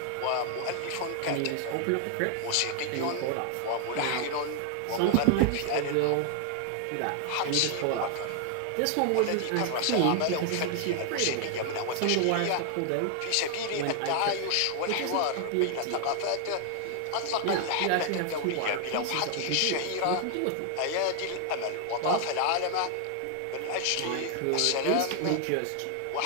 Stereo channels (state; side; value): different; both; correlation 0.00